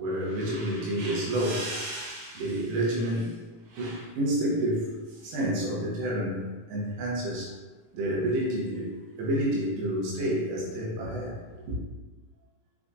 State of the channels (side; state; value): left; late; 18 ms